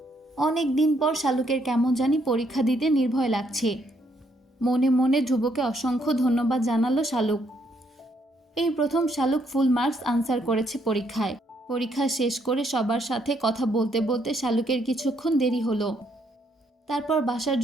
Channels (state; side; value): normal; both; correlation 0.72